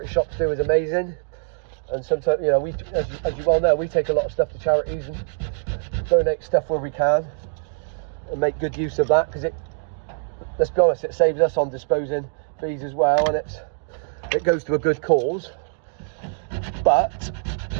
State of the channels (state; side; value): silent; left; digital silence